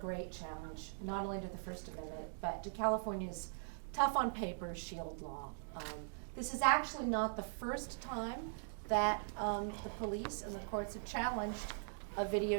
challenge, not only to the First Amendment, but to California's tough on paper SHIELD law. This is actually not the first time that the police and the courts have challenged a video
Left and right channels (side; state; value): left; silent; digital silence